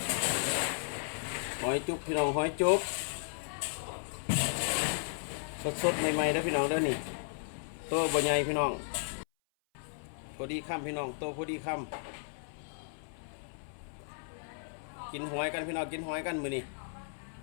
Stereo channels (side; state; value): right; silent; 55 dB below the other